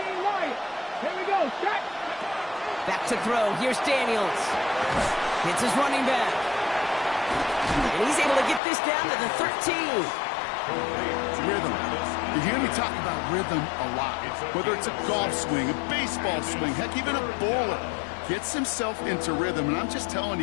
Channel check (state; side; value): drops out; right; at 8.6 s